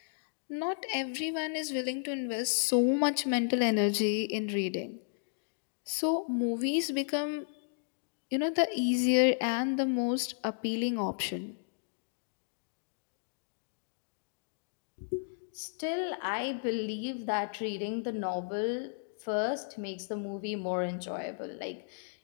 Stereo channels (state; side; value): silent; right; digital silence